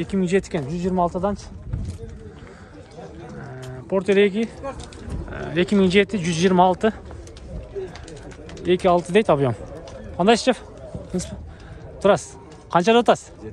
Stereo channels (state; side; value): identical; both; correlation 1.00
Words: экен, 126-дан. Портер 2 2007 126 26 дейт объем. Кандай шеф? Турасыз. Канча деп атасыз?